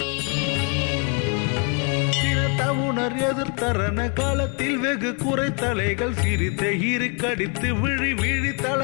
சினத்தவுணர் எதிர்த்தரன காலத்தில் வெகு குறைத்தலைகள் சிரித்த இருக்கடித்து விழி விழி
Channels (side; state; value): right; quieter; 35.5 dB